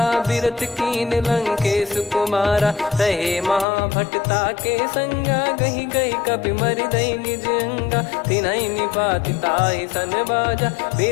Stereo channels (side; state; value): right; drops out; at 3.7 s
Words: बिरत कीन लंकेश कुमारा। रहे महाभटता के संगा, गही गही कपि मरि दई निज अंगा। तिन्हि निपाति ताहि सन बाजा,